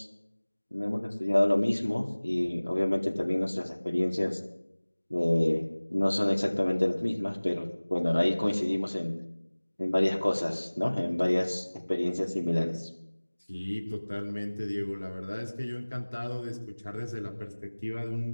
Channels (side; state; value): both; inverted; correlation -1.00